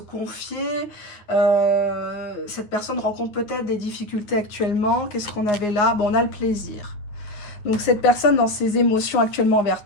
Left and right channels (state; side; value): late; right; 9.3 ms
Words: Cette personne rencontre peut-être des difficultés actuellement. Qu'est-ce qu'on avait là? Bon, on a le plaisir. Donc cette personne dans ses émotions actuellement vers